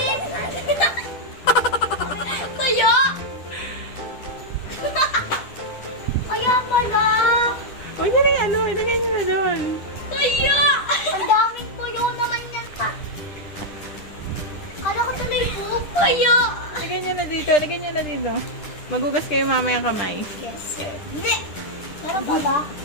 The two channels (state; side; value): late; right; 10 ms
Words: Kaya! Kaya pala! Huwag niyo rin ano, ilagay niyo na doon. Kaya! Ang daming tuyo naman yan pa. Kala ko tuloy po. Kaya! Lagyan niyo na dito, lagyan niyo na dito. Magugas kayo mamaya kamay. Yes, sir. Hindi! Meron pa ba?